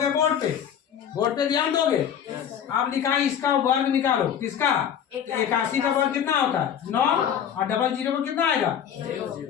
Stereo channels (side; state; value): right; quieter; 8.9 dB